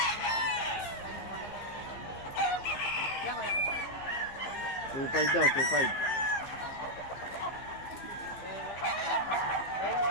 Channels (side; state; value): right; late; 15 ms